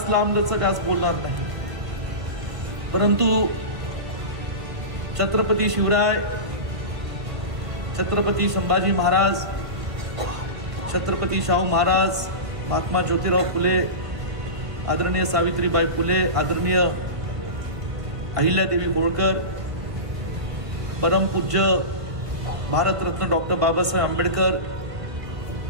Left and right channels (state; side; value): late; left; 1.5 ms